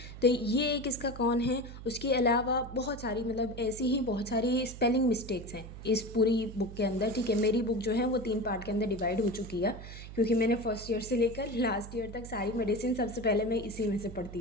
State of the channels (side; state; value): right; noise; hum, 12 dB below the sound